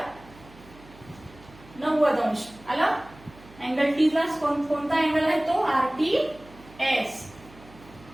90 अंश. आलं, अँगल T ला कोणता अँगल आहे, तो RTS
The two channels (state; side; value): noise; right; hum, 22 dB below the sound